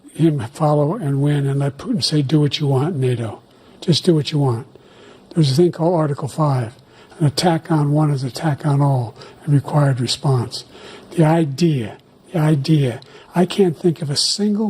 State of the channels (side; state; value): both; identical; correlation 1.00